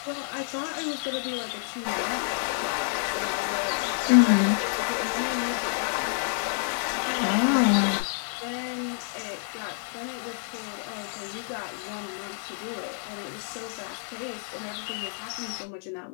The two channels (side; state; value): right; silent; 59 dB below the other